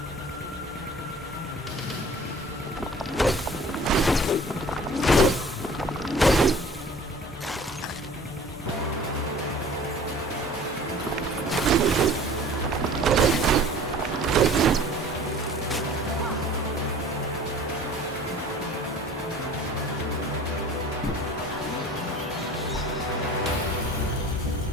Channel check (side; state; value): both; normal; correlation 0.46